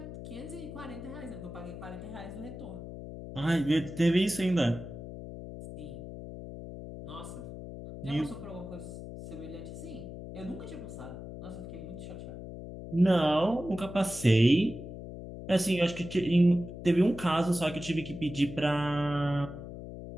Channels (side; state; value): left; noise; hum, 11 dB below the sound